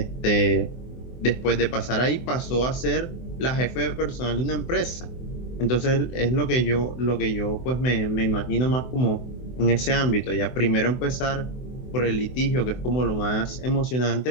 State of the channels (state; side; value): late; right; 24 ms